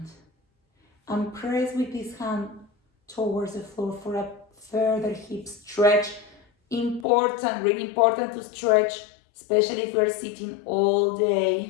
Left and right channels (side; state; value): right; drops out; at 7.1 s